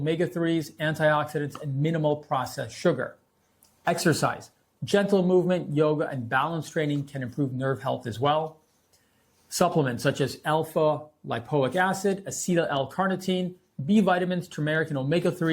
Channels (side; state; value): both; identical; correlation 1.00